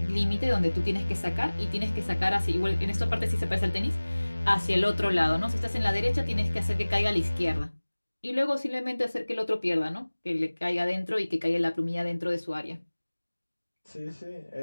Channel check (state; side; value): inverted; both; correlation -1.00